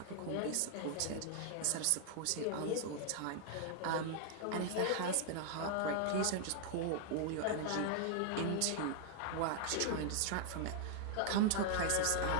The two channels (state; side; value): different; both; correlation 0.00